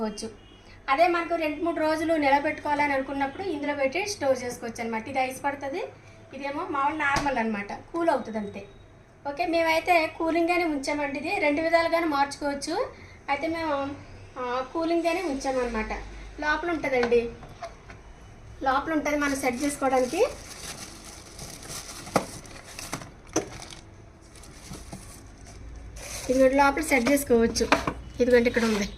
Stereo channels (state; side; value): identical; both; correlation 1.00